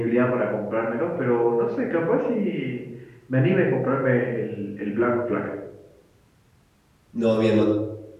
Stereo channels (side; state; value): both; identical; correlation 1.00